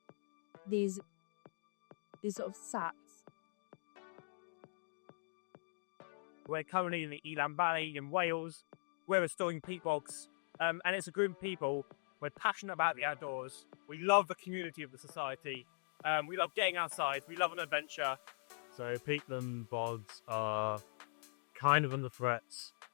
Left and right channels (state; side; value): silent; right; digital silence